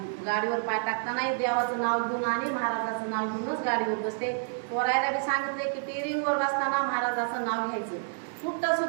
गाडीवर पाय टाकताना देवाचं नाव घेऊन आणि महाराजाचं नाव घेऊनच गाडीवर बसते पोरायला बी सांगितले की टेरिंगवर बसताना महाराजाचं नाव घ्यायचं कुठं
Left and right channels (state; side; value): silent; left; digital silence